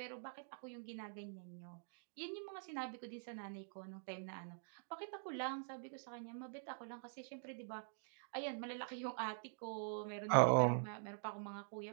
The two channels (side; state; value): left; silent; digital silence